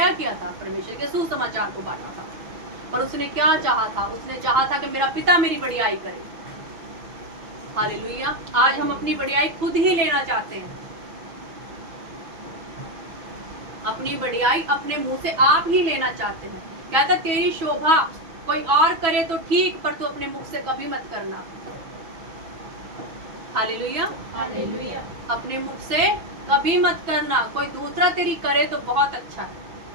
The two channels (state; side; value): late; left; 6.1 ms